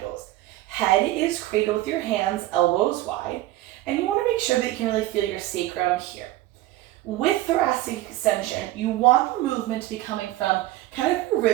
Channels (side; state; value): left; quieter; 16.2 dB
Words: goes. Head is cradle with your hands, elbows wide, and you want to make sure that you can really feel your sacrum here. With thoracic extension, you want the movement to be coming from kind of your